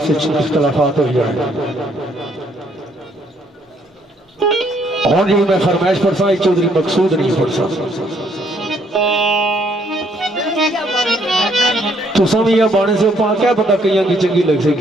इख्तलाफात हो जाए। हूँ जी मैं फरमाइश पढ़सा, चौधरी मकसूद नहीं पढ़सा। तुसा भी यह बाणे से पा क्या पता, कई की चंगी लग सी,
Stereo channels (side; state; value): both; normal; correlation 0.68